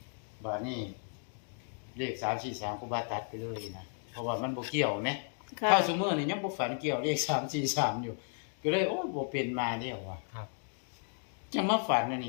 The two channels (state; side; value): silent; right; 55 dB below the other